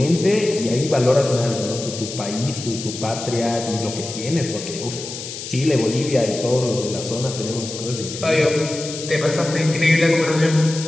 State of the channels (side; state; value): left; noise; hiss, 9 dB below the sound